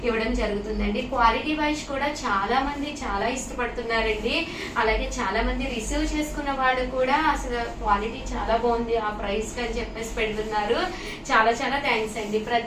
ఇవ్వడం జరుగుతుందండి. క్వాలిటీ వైజ్ కూడా చాలా మంది చాలా ఇష్టపడుతున్నారు. అలాగే చాలా మంది రిసీవ్ చేసుకున్న వాళ్ళు కూడా అసలు క్వాలిటీ చాలా బాగుంది ఆ ప్రైస్ అని చెప్పేసి పెడుతున్నారు. చాలా చాలా థ్యాంక్స్ అండి.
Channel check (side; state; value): both; identical; correlation 1.00